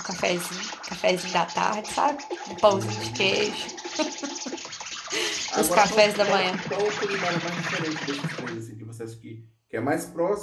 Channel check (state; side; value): identical; both; correlation 1.00